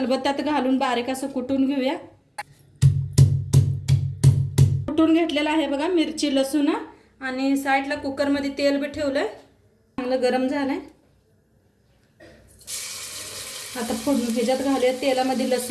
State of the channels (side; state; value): both; identical; correlation 1.00